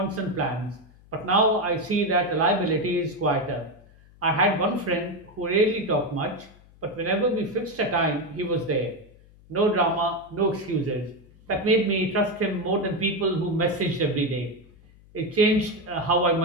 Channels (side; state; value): left; noise; hum, 25 dB below the sound